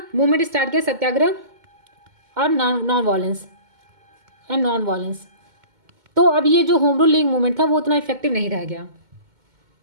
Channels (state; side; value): late; left; 2.2 ms